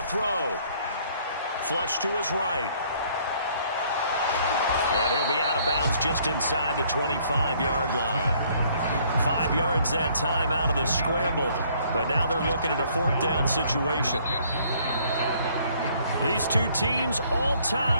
throw. Flush to his right. And he'll be out of bounds just inside the 25-yard line. 5 yards that time out of the scramble. But now they're looking at a 4th down situation. These two teams all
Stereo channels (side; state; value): both; inverted; correlation -0.62